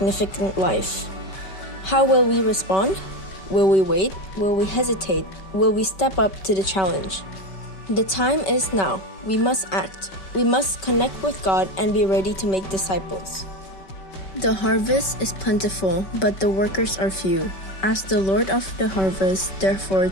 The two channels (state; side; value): late; right; 5.2 ms